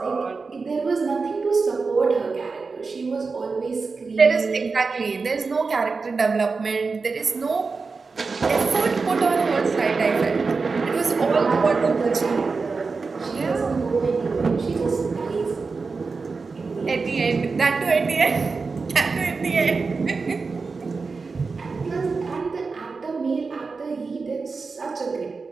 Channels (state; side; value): quieter; left; 4.4 dB